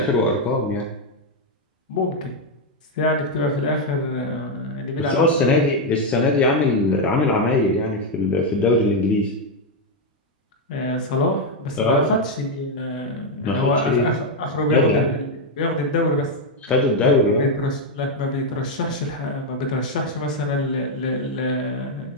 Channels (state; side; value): normal; both; correlation 0.02